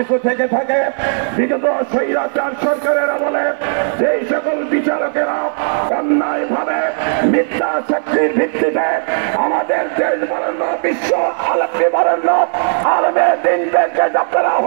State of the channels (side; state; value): left; silent; 59 dB below the other